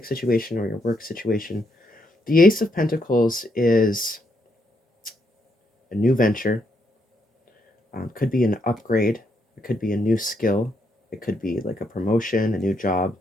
situation or your work situation. The Ace of Pentacles is a new venture. Could be an upgrade. It could be a new skill. It could be like a promotion, a new job,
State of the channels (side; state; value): both; normal; correlation 0.77